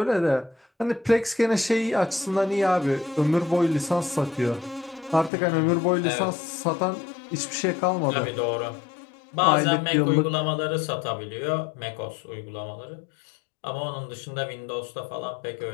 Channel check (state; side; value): drops out; right; at 5.3 s